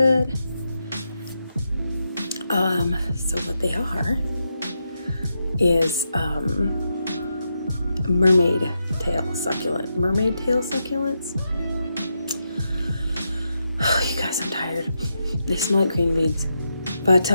So what they are is mermaid tail succulent. Mermaid tail succulents. Oh, you guys, I'm tired. They smell like green beans. But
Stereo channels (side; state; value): both; inverted; correlation -0.84